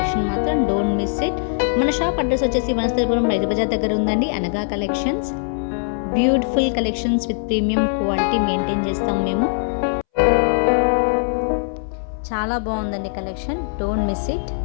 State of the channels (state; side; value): silent; right; 64 dB below the other